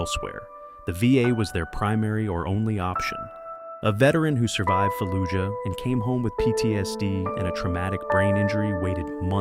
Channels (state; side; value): identical; both; correlation 1.00